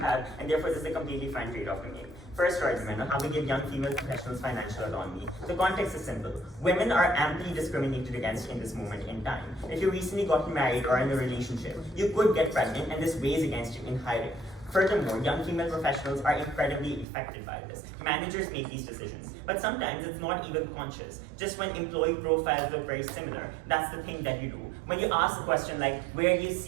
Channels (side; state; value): left; drops out; at 17.1 s